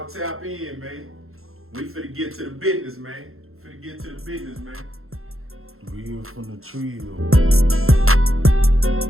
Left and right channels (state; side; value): late; left; 0.62 ms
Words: tap in, man. We finna get to the business, man. Finna get to the business, man. Real from the Trill.